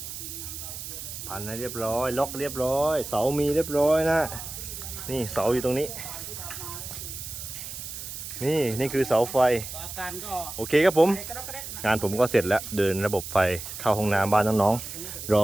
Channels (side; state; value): right; noise; hiss, 9 dB below the sound